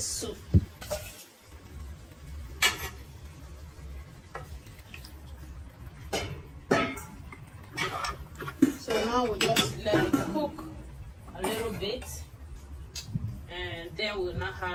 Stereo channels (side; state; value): both; identical; correlation 1.00